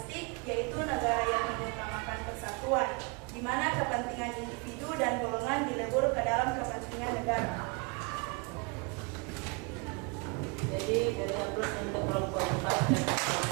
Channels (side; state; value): left; quieter; 31.1 dB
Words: yaitu negara yang mengutamakan persatuan, di mana kepentingan individu dan golongan dilebur ke dalam kepentingan negara. Jadi beri aplaus untuk kelompok 4 dan